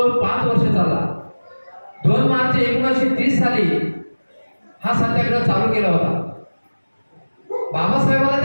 5 वर्ष चालला. 2 मार्च 1930 साली हा सत्याग्रह चालू केला होता. बाबासाहेबांना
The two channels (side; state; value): both; inverted; correlation -1.00